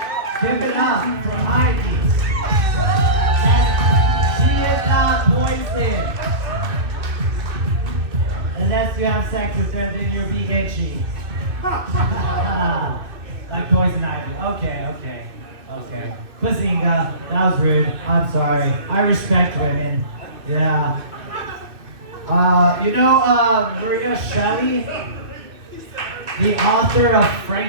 Give it up for Ivy. And she is not poisoned. Unless you have sex with her, then you'll be itchy. Like poison ivy. Okay. Pusinga, that was rude. I'm sorry. I respect women. Yeah. Maria Shelley, the author of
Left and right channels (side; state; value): left; late; 2.6 ms